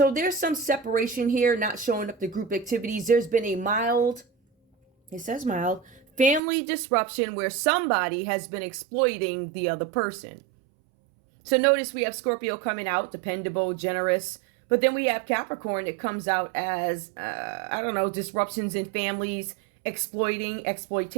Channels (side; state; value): left; drops out; at 6.4 s